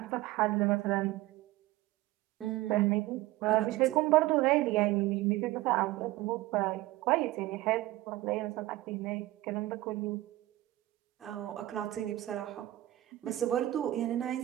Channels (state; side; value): quieter; left; 16.9 dB